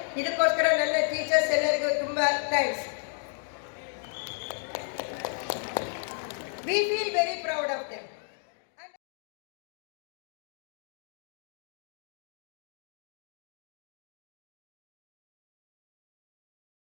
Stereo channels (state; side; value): silent; right; 56 dB below the other